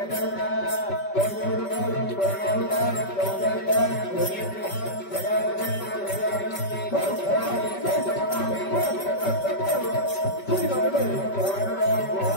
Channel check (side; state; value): right; late; 5.2 ms